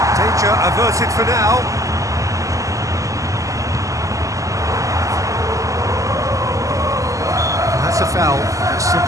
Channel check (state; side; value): late; left; 0.16 ms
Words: Danger averted for now. That's a foul. A